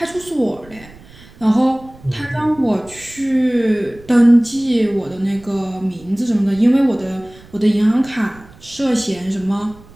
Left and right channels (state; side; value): noise; right; rumble, 23 dB below the sound